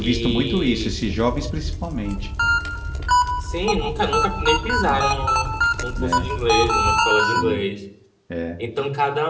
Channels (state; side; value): identical; both; correlation 1.00